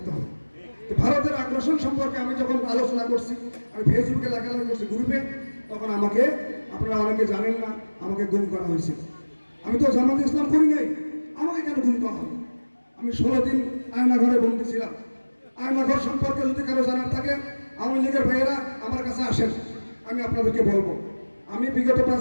হবে। ভারতের আগ্রাসন সম্পর্কে আমি যখন আলোচনা করছি, আমি ফেসবুকে লেখালেখি করছি, গ্রুপে, তখন আমাকে, আপনারা অনেকে জানেন না, আমাকে গুম করা হয়েছিল। আমি তো জামাতে ইসলাম করি নাই, আমাকে কেন গুম করা হবে? আমি 16 দিন আয়নাঘরে বন্দী ছিলাম। আয়নাঘর সম্পর্কে যদি কারো জানার থাকে, আওয়ামী লীগের ভাইয়েরা আমার কাছে আসেন, আমি আপনাদেরকে বলবো। আমি বিগত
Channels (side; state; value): both; inverted; correlation -1.00